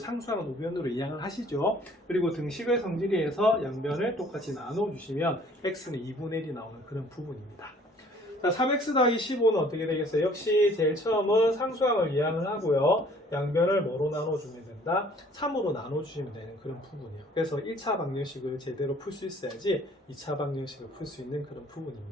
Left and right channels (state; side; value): normal; both; correlation 0.56